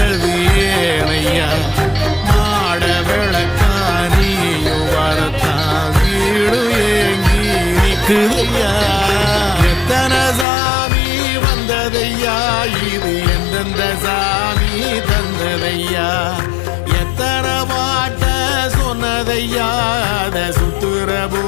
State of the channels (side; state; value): right; drops out; at 10.5 s